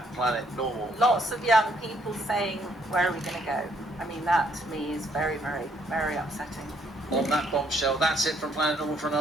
Planet Normal. Lots of young people saying, where are we going to go? I mean, that to me is very, very, very upsetting. On that bombshell, that's it from Planet Normal for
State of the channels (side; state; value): both; normal; correlation 0.69